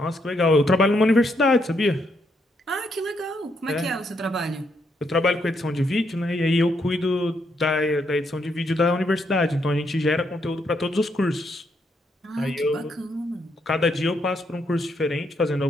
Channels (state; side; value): normal; both; correlation 0.76